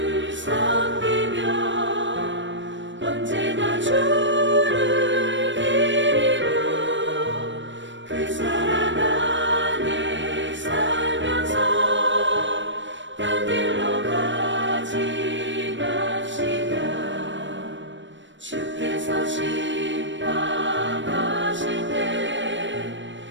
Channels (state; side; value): late; left; 0.54 ms